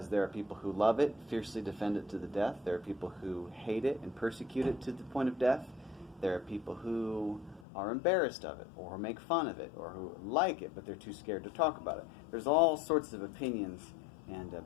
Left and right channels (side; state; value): right; drops out; at 7.7 s